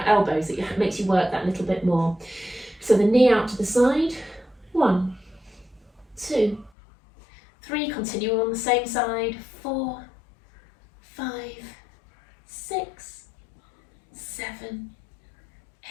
elbows, it makes you work that little bit more. So the knee out to the side. 1, 2, 3, continue on the same side. 4, 5, 6, 7,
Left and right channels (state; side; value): drops out; right; at 6.7 s